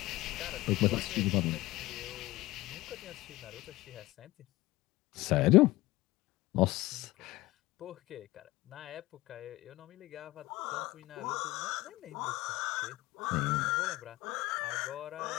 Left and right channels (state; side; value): quieter; right; 18.8 dB